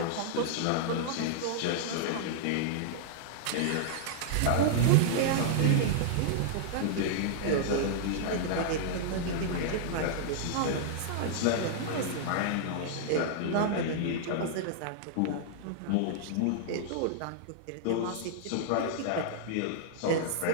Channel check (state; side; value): different; both; correlation -0.01